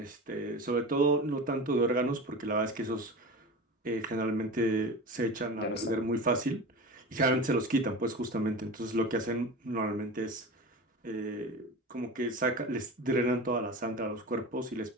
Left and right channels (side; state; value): both; normal; correlation 0.30